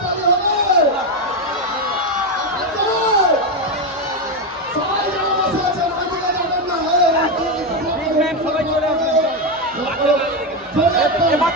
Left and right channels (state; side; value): normal; both; correlation 0.09